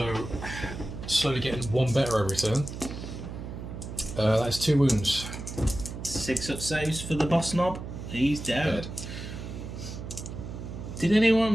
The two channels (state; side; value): noise; right; hum, 9 dB below the sound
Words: slowly getting 1 better every turn. That's 2 wounds. 6 up saves for the boss knob. He's dead. Dead. Can